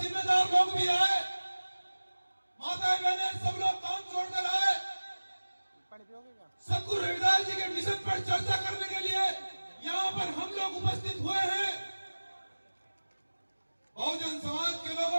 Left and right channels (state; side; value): inverted; both; correlation -1.00